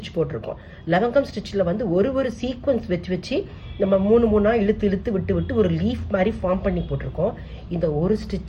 போட்டிருக்கோம். லவங்கம் ஸ்டிச்சில் வந்து ஒரு சீக்வன்ஸ் வச்சு நம்ம மூணாக இழுத்து விட்டு ஒரு லீஃப் மாதிரி ஃபார்ம் பண்ணி போட்டிருக்கோம். இந்த ஒரு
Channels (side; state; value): both; identical; correlation 1.00